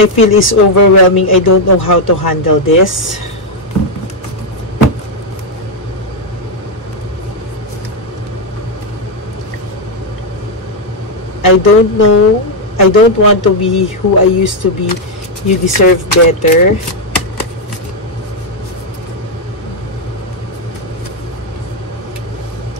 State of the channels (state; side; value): normal; both; correlation 0.01